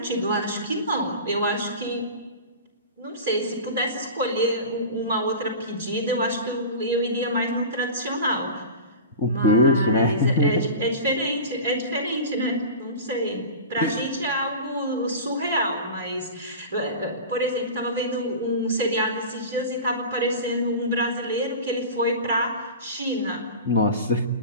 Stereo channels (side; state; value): both; inverted; correlation -0.32